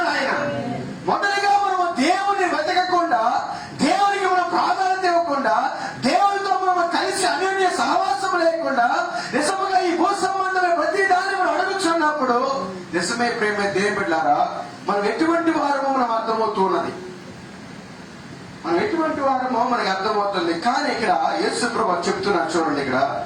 ఆయన. మొదటిగా మనము దేవుని వెతకకుండా, దేవునికి మనం ప్రాధాన్యత ఇవ్వకుండా, దేవునితో మనం కలిసి అన్యోన్య సహవాసం లేకుండా నిజముగా ఈ భూ సంబంధమైన ప్రతి దాన్ని మనం అడుగుచున్నప్పుడు నిజమే ప్రియమైన దేవుని బిడ్డలారా, మనం ఎటువంటి వారమో మనం అర్థమవుతూ ఉన్నది. మనం ఎటువంటి వారమో మనకి అర్థమవుతుంది. కానీ ఇక్కడ యేసు ప్రభువు చెప్తున్నారు చూడండి, ఇక్కడ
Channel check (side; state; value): both; identical; correlation 1.00